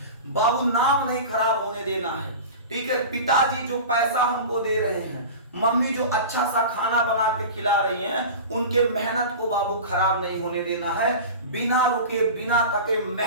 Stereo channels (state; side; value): inverted; both; correlation -0.32